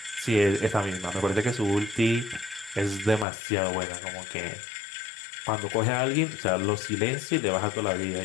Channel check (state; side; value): drops out; right; at 3.2 s